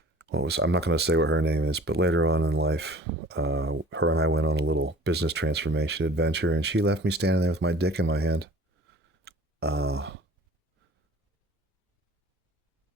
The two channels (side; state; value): both; normal; correlation 0.47